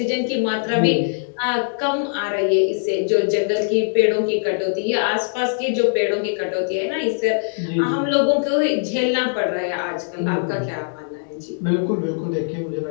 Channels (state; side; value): silent; right; digital silence